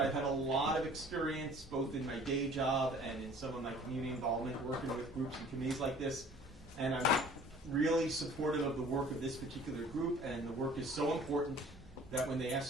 had a lot of experience both in my day job and in some of my community involvement working with groups and committees like this, and I'm really supportive of the work of this particular group, and the work is so important that when they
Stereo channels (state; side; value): normal; both; correlation 0.50